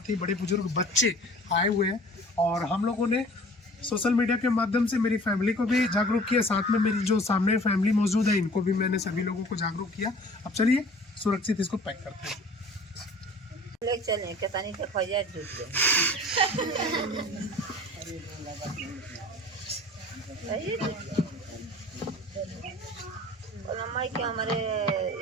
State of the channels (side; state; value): both; normal; correlation 0.47